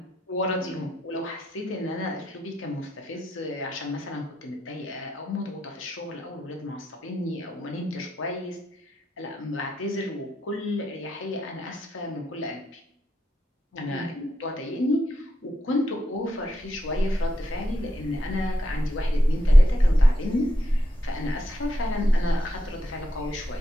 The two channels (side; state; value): both; normal; correlation 0.82